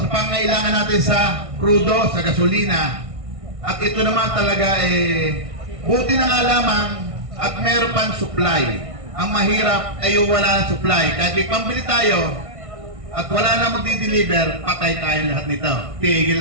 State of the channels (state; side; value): late; left; 1.6 ms